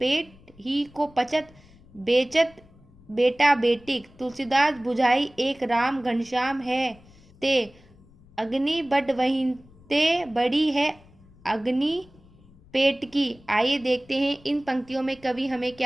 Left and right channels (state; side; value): noise; left; rumble, 26 dB below the sound